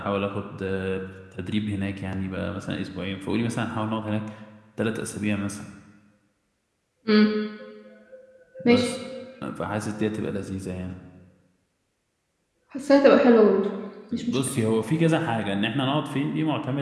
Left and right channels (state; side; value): identical; both; correlation 1.00